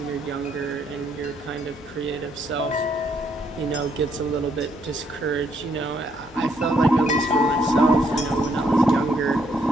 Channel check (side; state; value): both; normal; correlation 0.71